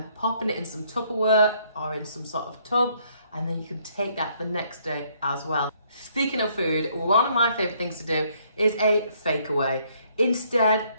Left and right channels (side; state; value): both; inverted; correlation -0.67